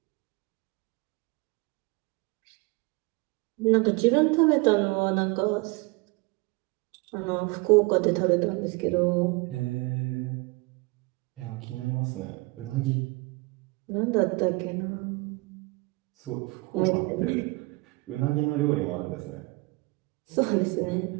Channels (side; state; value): left; quieter; 25.8 dB